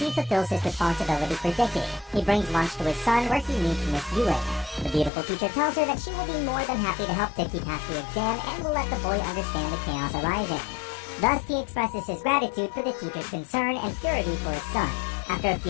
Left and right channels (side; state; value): right; drops out; at 5.1 s